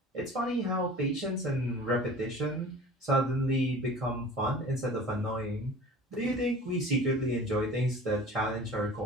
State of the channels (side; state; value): both; normal; correlation 0.42